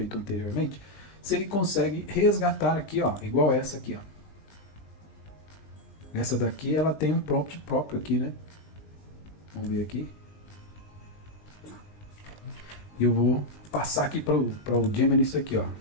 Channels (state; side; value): late; right; 20 ms